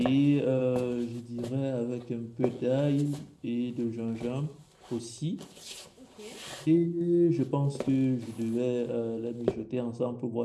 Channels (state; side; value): identical; both; correlation 1.00